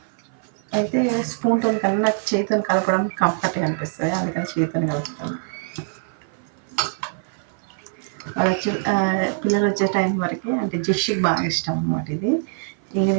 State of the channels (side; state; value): left; silent; 55 dB below the other